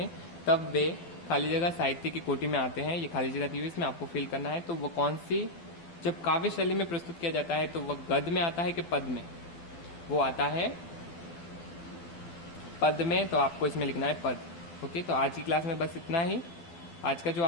तब वे खाली जगह साहित्य की कोटि में आते हैं। ये खाली जगह दी हुई इसमें आपको फिल करना है। तो वो कौन सी, जब काव्य शैली में प्रस्तुत किया जाता है तो वह गद्य में आता है कि पद में, वो आता है पद में। तो आपको इसमें लिखना है पद। ओके, तो आज की क्लास में बस इतना ही। आज का जो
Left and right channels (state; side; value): late; right; 12 ms